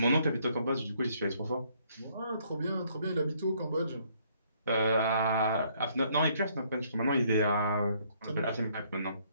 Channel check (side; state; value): both; inverted; correlation -0.66